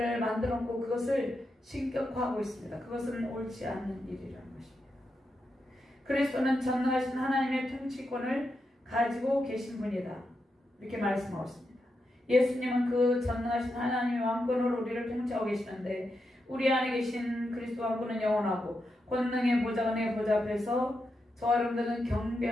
만들었고 그것을 신격화하고 있습니다. 그것은 옳지 않는 일이라는 것입니다. 그리스도는 전능하신 하나님의 통치권을 가지고 계신 분이다. 이렇게 말씀하고 있습니다. 예수님은 그 전능하신 하나님의 왕권으로 우리를 통치하고 계시는데 우리 안에 계신 그리스도 왕권은 영원하고 권능의 보좌, 은혜의 보좌 앞에서 저와 여러분들은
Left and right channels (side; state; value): both; normal; correlation 0.86